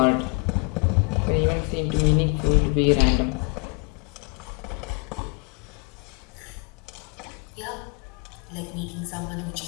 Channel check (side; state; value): right; quieter; 30.5 dB